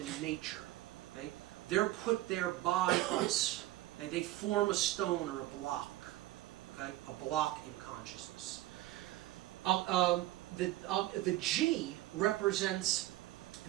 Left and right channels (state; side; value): quieter; left; 16.5 dB